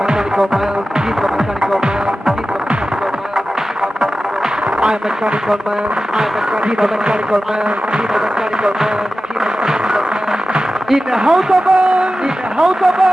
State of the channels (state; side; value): normal; both; correlation 0.94